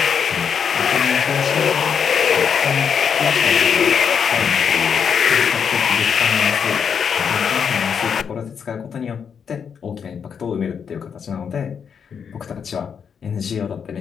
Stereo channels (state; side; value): quieter; right; 7.0 dB